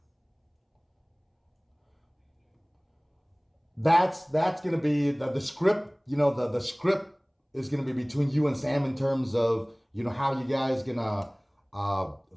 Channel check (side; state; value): both; identical; correlation 1.00